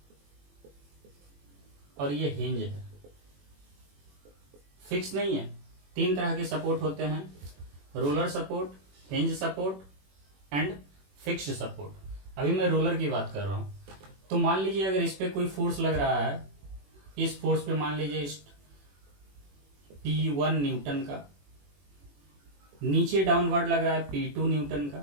और ये हिंज है। फिक्स नहीं है, 3 तरह के सपोर्ट होते हैं, roller support, hinge support and fixed support. अभी मैं रोलर की बात कर रहा हूं। तो मान लीजिए अगर इस पे कोई फोर्स लग रहा है, इस फोर्स पे मान लीजिए इस P1 न्यूटन का, नीचे डाउनवर्ड लग रहा है P2 न्यूटन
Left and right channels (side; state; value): left; late; 21 ms